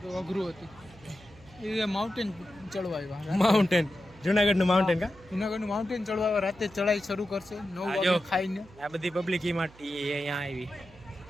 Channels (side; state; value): right; noise; hum, 23 dB below the sound